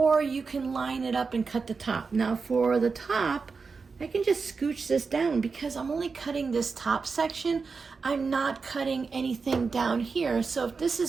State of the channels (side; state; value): left; quieter; 4.8 dB